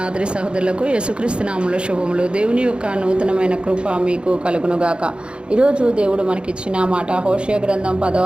సహోదరులకు యేసుక్రీస్తు నామములో శుభములు. దేవుని యొక్క నూతనమైన కృప మీకు కలుగునుగాక. ఈరోజు దేవుడు మనకిచ్చిన మాట హోషేయ గ్రంథం 10వ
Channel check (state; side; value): late; left; 0.055 ms